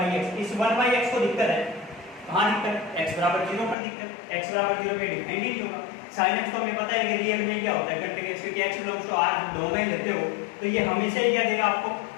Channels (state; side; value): drops out; right; at 3.8 s